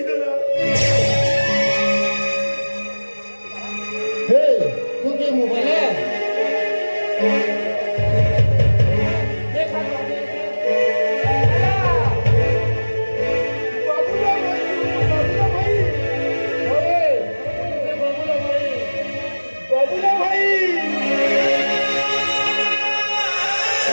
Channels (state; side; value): inverted; both; correlation -1.00